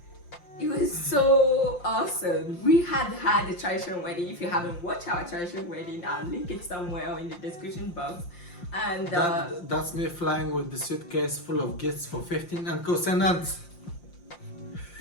It was so awesome. We had a traditional wedding. If you haven't watched our traditional wedding, I'll link it somewhere in the description box. And that's me flying with the suitcase full of gifts for 15 uncles and aunts.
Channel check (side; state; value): right; late; 5.7 ms